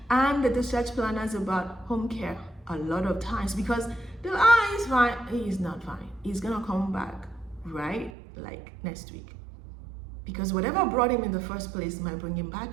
and the discharge planners about home care a lot of times, because they're he's fine. He's not fine. He's gonna come back, right? Like next week. Because whatever brought him in the first place might bring him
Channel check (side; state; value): left; drops out; at 8.1 s